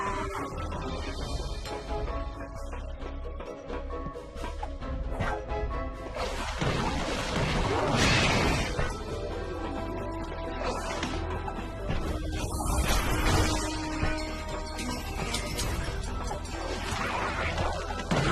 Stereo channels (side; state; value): both; identical; correlation 1.00